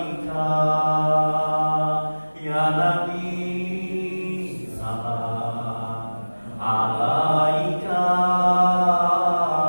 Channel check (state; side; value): inverted; both; correlation -1.00